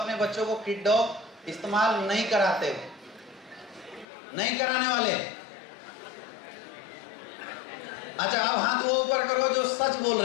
बच्चों को किड डॉग इस्तेमाल नहीं कराते हो, नहीं कराने वाले। अच्छा, अब हाथ वो ऊपर करो जो सच बोल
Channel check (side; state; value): right; drops out; at 4.0 s